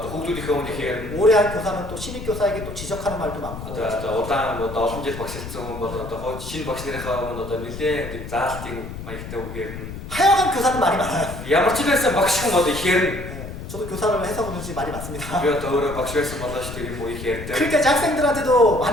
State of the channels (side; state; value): left; noise; rumble, 10 dB below the sound